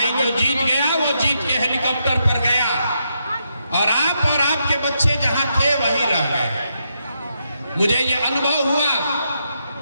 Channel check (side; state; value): both; inverted; correlation -0.81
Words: जो जीत गया वो जीत के हेलीकॉप्टर पर गया, और आप और आपके बच्चे जहां थे वहीं रह गए। मुझे ये अनुभव हुआ